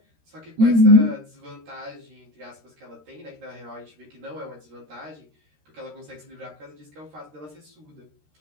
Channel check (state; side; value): late; left; 13 ms